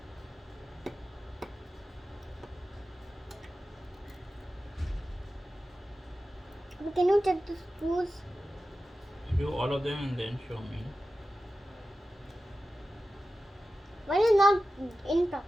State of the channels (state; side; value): normal; both; correlation 0.93